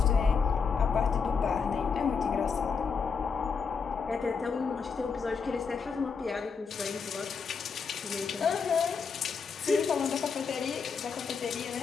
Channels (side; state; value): right; quieter; 5.6 dB